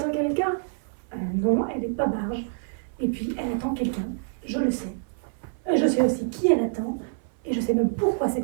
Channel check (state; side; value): silent; left; 61 dB below the other